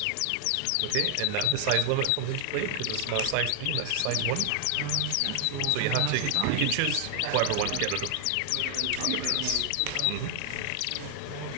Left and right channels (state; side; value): different; both; correlation 0.00